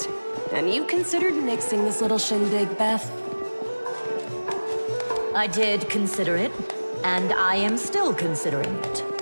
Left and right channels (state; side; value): inverted; both; correlation -1.00